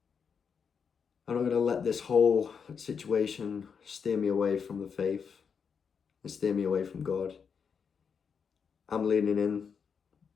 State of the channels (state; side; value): quieter; right; 6.4 dB